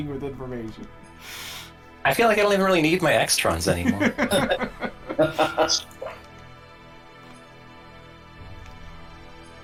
with information. I feel like I don't even really need my extrons anymore.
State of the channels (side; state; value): both; identical; correlation 1.00